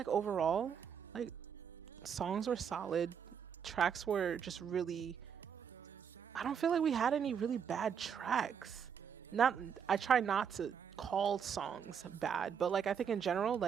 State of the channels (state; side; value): quieter; left; 7.5 dB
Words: overall, like, songs were solid. Tracks were just really, I don't feel like we had any really bad tracks. I try not to call songs bad, but like I think in general,